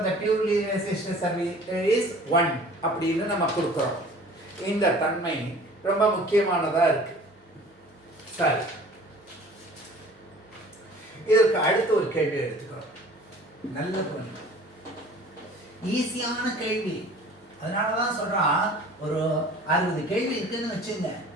the purely resistive circuit is 1 அப்படின்னு நம்ம கொடுக்கிறோம். இந்த தன்மை ரொம்ப முக்கியமானதா இருக்கு. சரி, இதற்கு அடுத்து ஒரு கேள்வி எடுத்துக்கிறோம். நல்ல பொண்ணு, ஈஸியான கேள்வி. அதனால தான் சொல்கிறான், ஒரு 60 கேள்வி இருக்குதுன்னு வச்சுங்க.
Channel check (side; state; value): both; normal; correlation 0.47